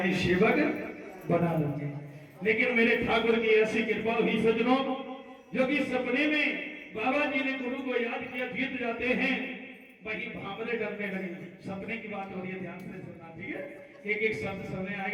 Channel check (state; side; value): identical; both; correlation 1.00